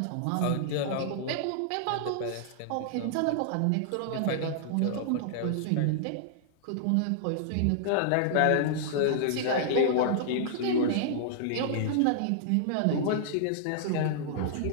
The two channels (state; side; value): different; both; correlation -0.01